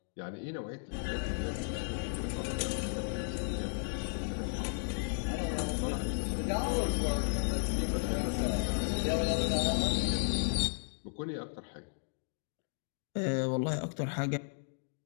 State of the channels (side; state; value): right; silent; digital silence